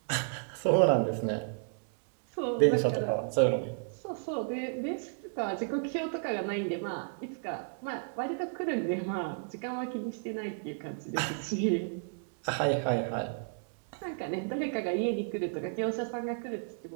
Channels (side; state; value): left; silent; digital silence